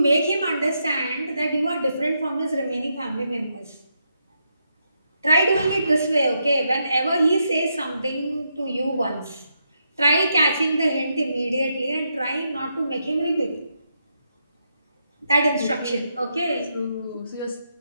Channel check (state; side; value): inverted; both; correlation -0.81